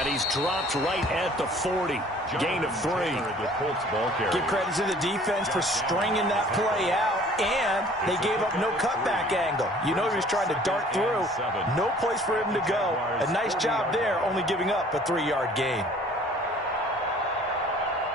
he's dropped right at the 40. Gain of 3. Give credit to the defense for stringing that play out, and they gave up no cutback angle. You know he was trying to dart through. No place for him to go. A nice job there, only giving up a 3-yard gain.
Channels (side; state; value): both; normal; correlation 0.52